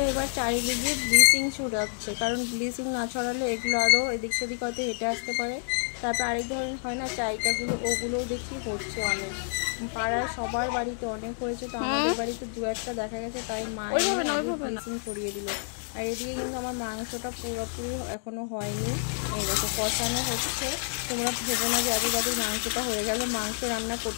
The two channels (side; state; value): right; silent; digital silence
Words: এবার চারিদিকে ব্লিচিং ছড়াচ্ছে, কারণ ব্লিচিং না ছড়ালে এগুলো আরও এদিক সেদিক হয়তো হেঁটে আসতে পারে। তারপর আরেক ধরনের হয় না চাইটাগুলো, ওগুলোও দেখি হচ্ছে অনেক, পাড়ায় সবার বাড়িতে অনেক হয়েছে, তো আমাদের বাড়িতে 2-1টা দেখা গেছে, তাই মা এনে আগে ব্লিচিং ছড়িয়ে দিল। আর এদিকে কিন্তু আমার মাংসটা পুরোপুরি এখনও হয়নি, এই দেখো কষানো হচ্ছে। তোমরা ভেবো না যে এত তাদের মাংসটা হয়ে গেল, মাংস রান্না